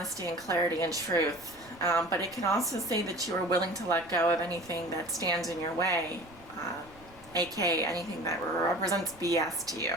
and clarity and truth, but it can also say that you are willing to let go of anything that stands in your way, aka anything that represents BS to you,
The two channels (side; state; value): right; noise; rumble, 23 dB below the sound